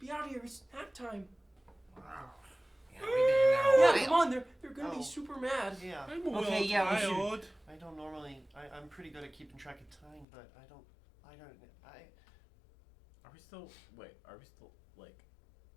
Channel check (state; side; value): drops out; right; at 10.2 s